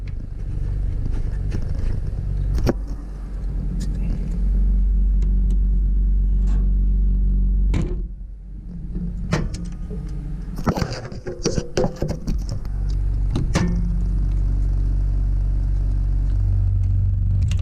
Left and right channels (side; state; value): both; identical; correlation 1.00